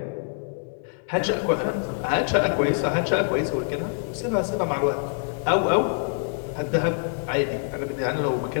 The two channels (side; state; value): right; silent; 56 dB below the other